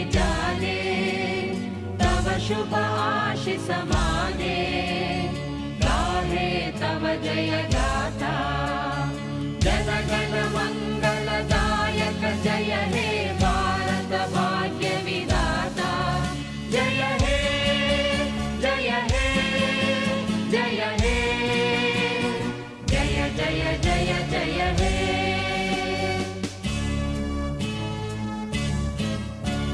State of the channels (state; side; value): identical; both; correlation 1.00